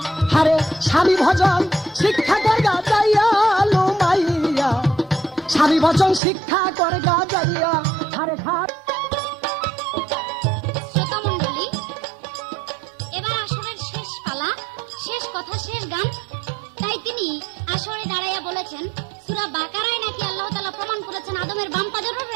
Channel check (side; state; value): left; drops out; at 6.2 s